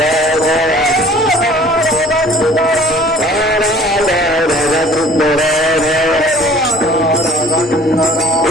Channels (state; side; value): normal; both; correlation 0.51